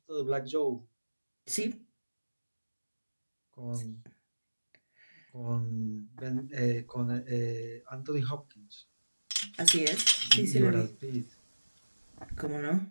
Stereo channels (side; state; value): both; inverted; correlation -1.00